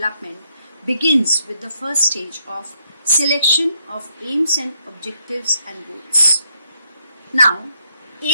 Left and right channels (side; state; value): both; inverted; correlation -0.75